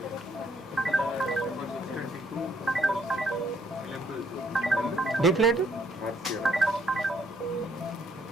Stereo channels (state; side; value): normal; both; correlation 0.68